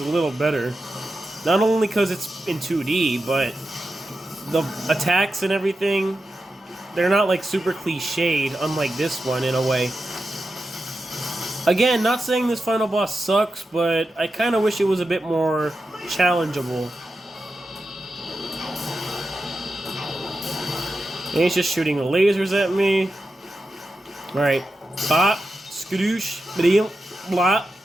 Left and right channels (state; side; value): normal; both; correlation 0.90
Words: little better. Not only because it's in 2D, but the attacks and everything, they're not like super cliched, unlike this one in a way. Again, not saying this final boss sucks, but I kind of wish it was a bit more challengeable. And he's just shooting lasers at me. Alright. Bop, skadoosh, blim, blop,